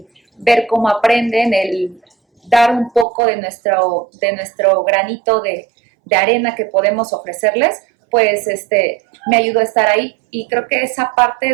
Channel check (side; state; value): left; drops out; at 3.1 s